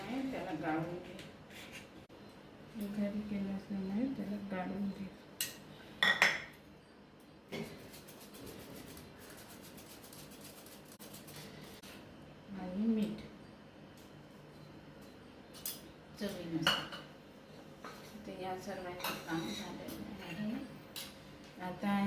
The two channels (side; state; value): both; identical; correlation 1.00